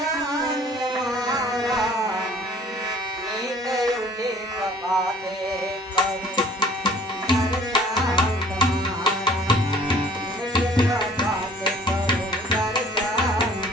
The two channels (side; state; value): both; normal; correlation 0.53